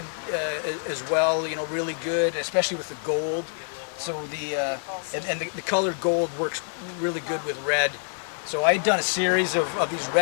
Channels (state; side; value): silent; right; 59 dB below the other